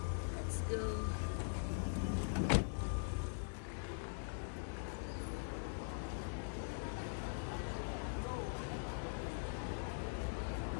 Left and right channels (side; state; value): right; silent; digital silence